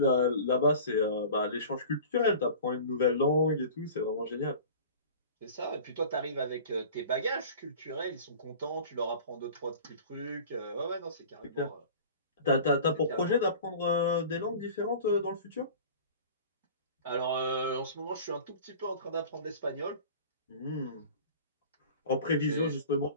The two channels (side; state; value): both; inverted; correlation -0.41